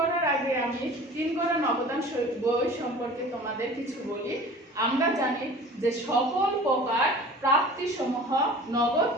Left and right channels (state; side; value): normal; both; correlation 0.42